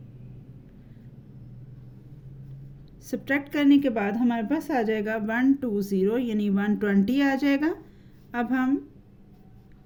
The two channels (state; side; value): identical; both; correlation 1.00